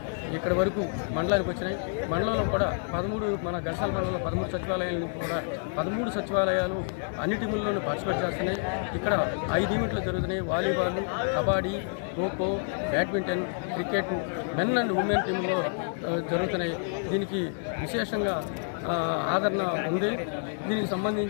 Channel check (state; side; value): silent; right; digital silence